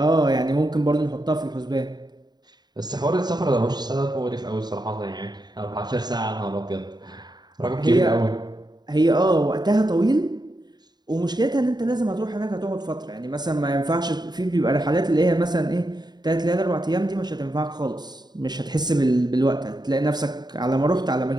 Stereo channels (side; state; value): left; late; 0.20 ms